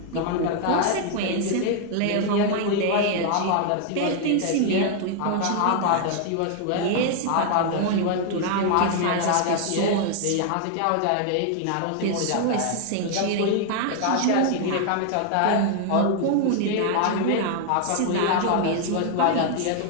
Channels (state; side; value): different; both; correlation 0.00